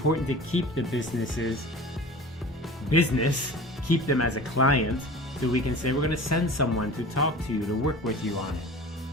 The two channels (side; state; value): both; normal; correlation 0.38